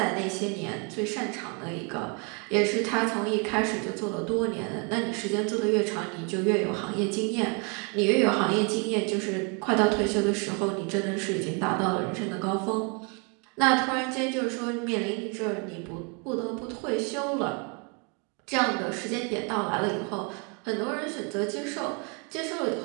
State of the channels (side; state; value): left; quieter; 34.6 dB